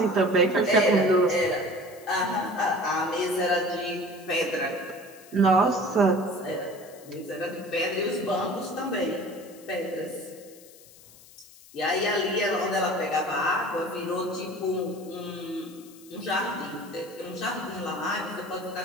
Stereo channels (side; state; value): left; noise; hiss, 22 dB below the sound